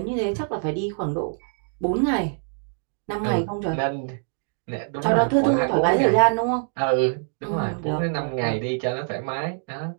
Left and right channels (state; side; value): silent; left; digital silence